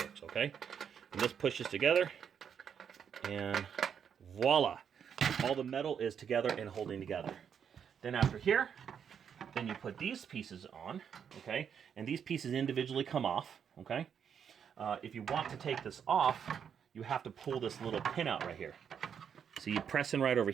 okay? And this pushes together, and voila! All the metal is together and holding together. Then after here, then you put these pieces on, okay? And these pieces individually come off, okay? If you want to take this off, you have to pull this little pin out right here. So you press in right over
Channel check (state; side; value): quieter; left; 7.7 dB